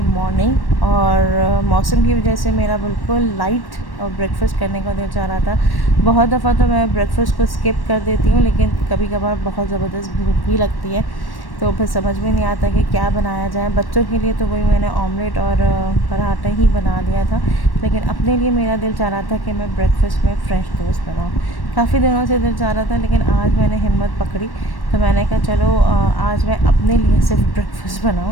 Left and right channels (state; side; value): late; right; 1.1 ms